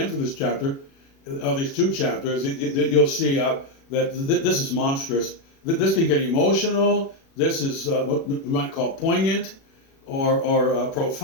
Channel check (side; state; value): right; late; 36 ms